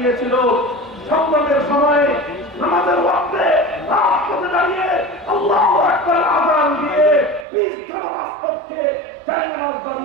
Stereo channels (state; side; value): drops out; left; at 7.5 s